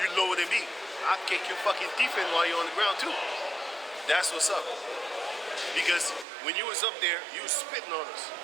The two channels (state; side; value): drops out; left; at 6.2 s